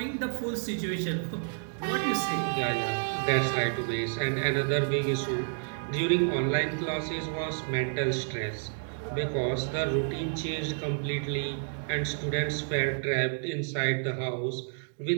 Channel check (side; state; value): left; silent; digital silence